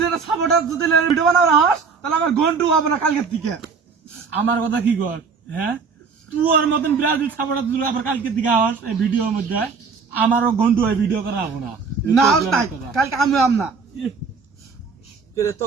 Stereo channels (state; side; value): quieter; left; 5.2 dB